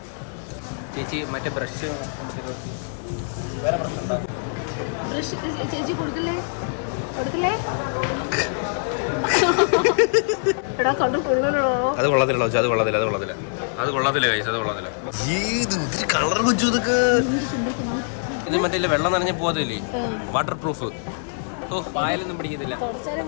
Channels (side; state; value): right; silent; digital silence